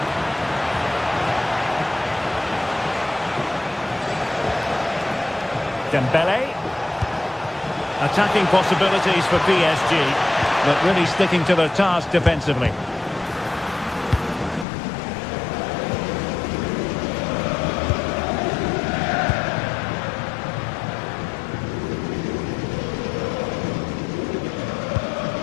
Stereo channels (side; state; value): right; drops out; at 14.7 s